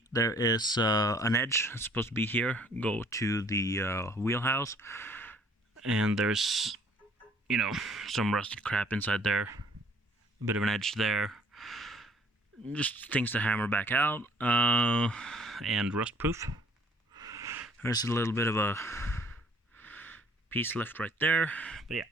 there is an edge that's supposed to be here, go to the wheelhouse, and there's, you know, some rusted crap inside there, a bit of an edge there, just things to hammer back out, and rust proof. There's a little bit of a piece left right there, but yeah,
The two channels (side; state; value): both; normal; correlation 0.58